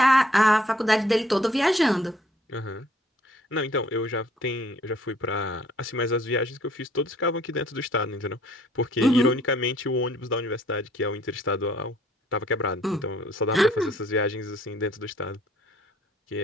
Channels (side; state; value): both; normal; correlation 0.60